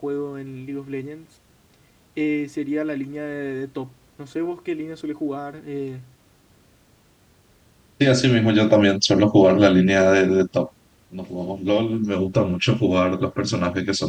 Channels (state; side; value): identical; both; correlation 1.00